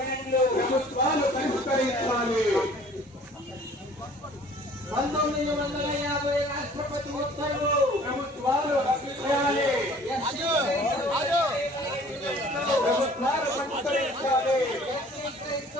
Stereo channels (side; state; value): both; normal; correlation 0.51